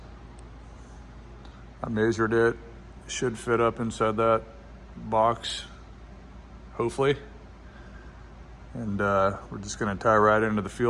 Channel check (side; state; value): both; identical; correlation 1.00